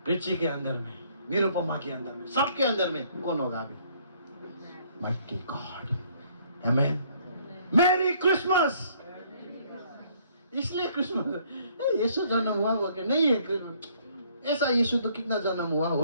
रिची के अंदर में, निरुपमा के अंदर में, सबके अंदर में कौन होगा अभी? Mighty God. Amen. Merry Christmas. इसलिए क्रिसमस यीशु जन्म हुआ कि नहीं है क्रिसमस, ऐसा यीशु तो कितना जन्म हुआ,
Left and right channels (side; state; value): both; inverted; correlation -0.63